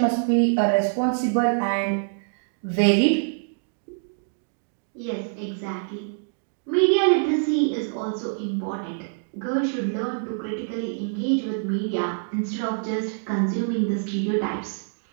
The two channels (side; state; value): left; silent; digital silence